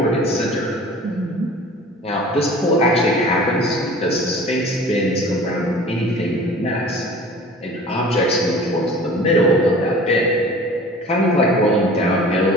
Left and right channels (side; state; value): both; normal; correlation 0.44